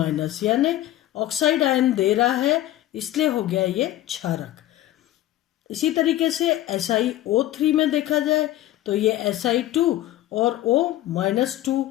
यानी ऑक्साइड आयन दे रहा है, इसलिए हो गया ये क्षारक। इसी तरीके से SiO3 में देखा जाए तो ये Si2 और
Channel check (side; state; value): right; quieter; 14.3 dB